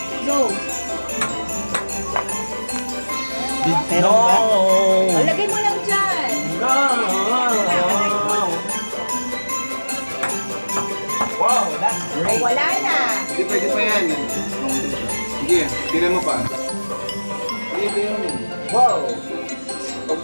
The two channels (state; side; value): inverted; both; correlation -1.00